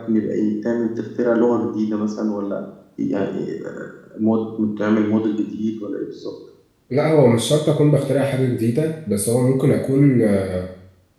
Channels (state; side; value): identical; both; correlation 1.00